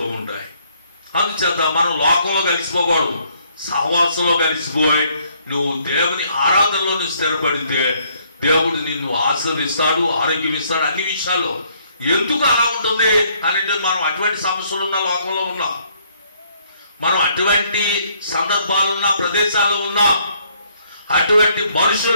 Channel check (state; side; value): inverted; both; correlation -0.67